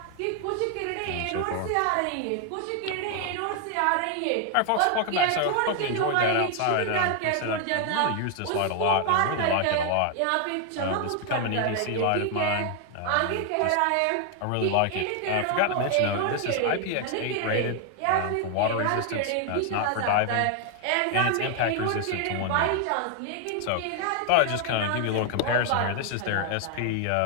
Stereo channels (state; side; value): different; both; correlation 0.00